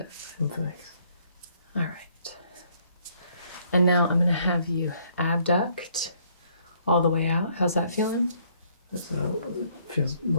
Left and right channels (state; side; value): inverted; both; correlation -0.66